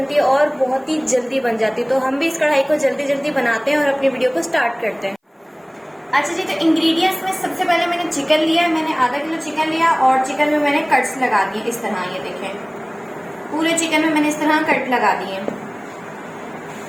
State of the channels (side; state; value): both; identical; correlation 1.00